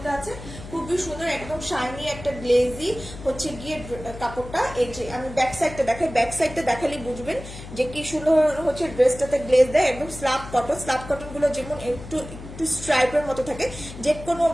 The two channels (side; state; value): left; noise; hum, 13 dB below the sound